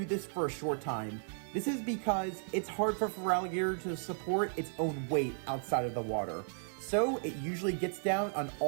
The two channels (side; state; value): left; silent; digital silence